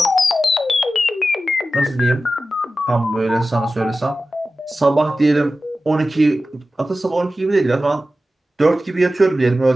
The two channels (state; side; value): normal; both; correlation 0.94